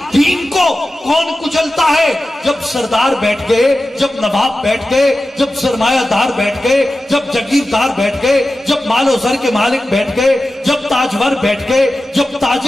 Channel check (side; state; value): both; normal; correlation 0.94